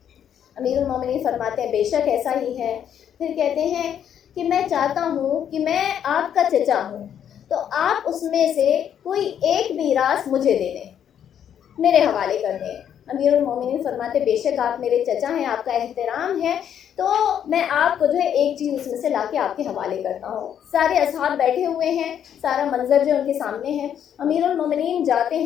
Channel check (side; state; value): right; quieter; 9.2 dB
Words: امیر المومنین فرماتے ہیں بے شک ایسا ہی ہے۔ پھر کہتے ہیں کہ میں چاہتا ہوں کہ میں آپ کا چچا ہوں تو آپ اس میں سے کوئی ایک میراث مجھے دے دیں، میرے حوالے کر دیں۔ امیر المومنین فرماتے بے شک آپ میرے چچا ہیں، آپ کا احترام ہے، تو میں آپ کو جو ہے ایک چیز اس میں سے لا کے آپ کے حوالے کرتا ہوں۔ سارے اصحاب بیٹھے ہوئے ہیں، سارا منظر جو ان کے سامنے ہے۔ امیر المومنین جاتے